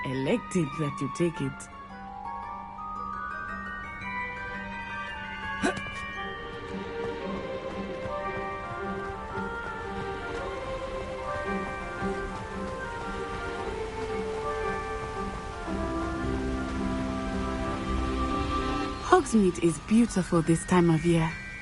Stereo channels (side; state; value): both; identical; correlation 1.00